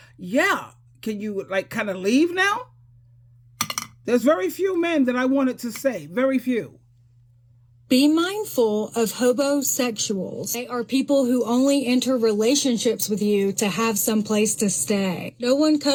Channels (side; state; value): both; identical; correlation 1.00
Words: Yeah. Can you kind of leave now? There's very few men that I wanted to say. Very few. Be mindful of hobosexuals. They are people who only enter relationships with you to have some place to stay. No one